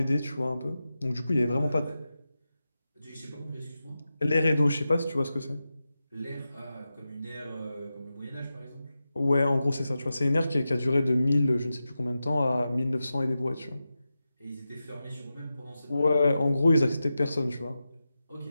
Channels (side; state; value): both; inverted; correlation -0.92